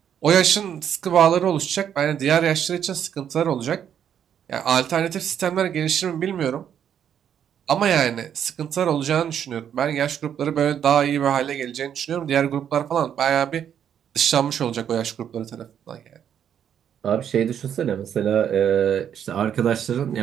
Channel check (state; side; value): quieter; left; 9.0 dB